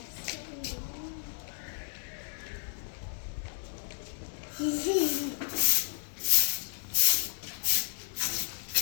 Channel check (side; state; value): right; silent; digital silence